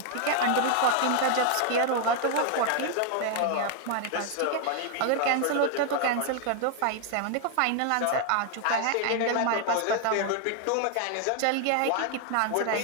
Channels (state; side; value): different; both; correlation 0.00